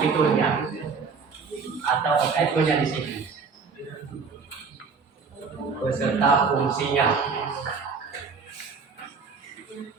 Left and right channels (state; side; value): quieter; left; 5.1 dB